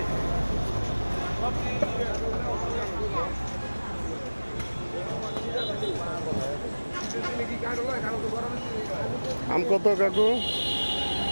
আম কত কাকু?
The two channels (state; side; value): inverted; both; correlation -1.00